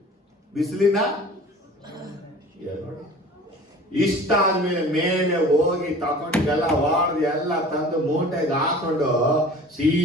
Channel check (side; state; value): both; normal; correlation 0.44